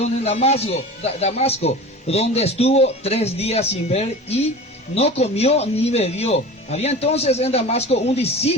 en Damasco, donde estuvo 3 días sin ver y no comió ni bebió. Había entonces en Damasco un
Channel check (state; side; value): normal; both; correlation 0.35